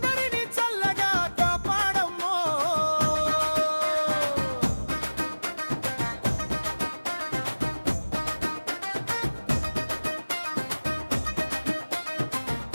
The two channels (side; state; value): both; inverted; correlation -1.00